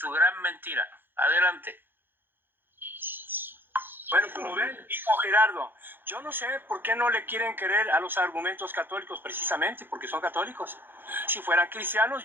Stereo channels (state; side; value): late; left; 0.099 ms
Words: gran mentira. Adelante. Bueno, como ven, dijo Gerardo, yo no sé por qué no le quieren creer a los argumentos católicos precisamente, porque son católicos. Si fueran cristianos,